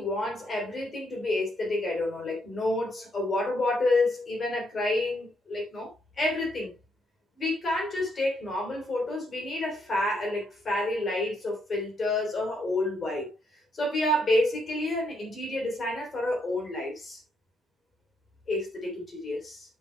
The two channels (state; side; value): normal; both; correlation 0.76